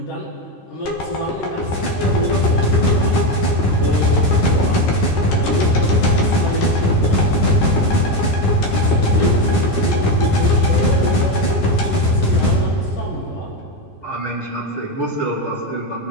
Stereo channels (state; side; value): late; right; 10 ms